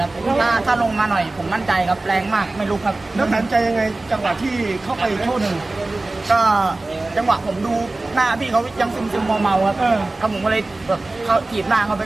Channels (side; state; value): left; quieter; 3.0 dB